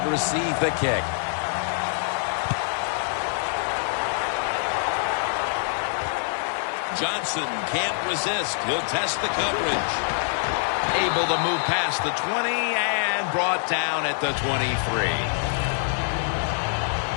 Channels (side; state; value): right; silent; digital silence